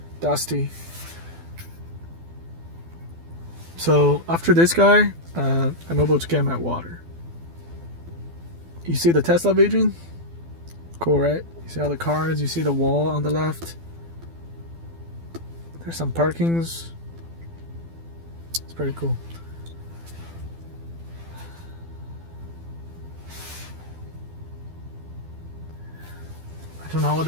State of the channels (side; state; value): left; late; 12 ms